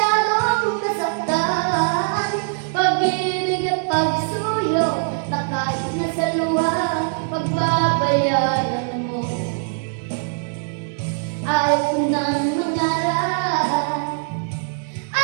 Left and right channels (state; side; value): silent; left; 65 dB below the other